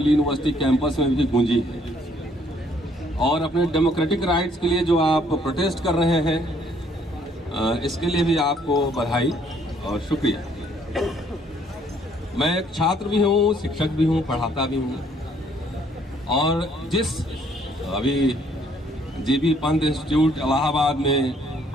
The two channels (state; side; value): normal; both; correlation 0.64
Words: यूनिवर्सिटी कैंपस में भी गूंजी है और अपने डेमोक्रेटिक राइट्स के लिए जो आप प्रोटेस्ट कर रहे हैं इसके लिए भी आपको बधाई और शुक्रिया। मैं एक छात्र भी हूँ, शिक्षक भी हूँ, पढ़ाता भी हूँ और जिस अभी जीबी पंत इंस्टीट्यूट इलाहाबाद में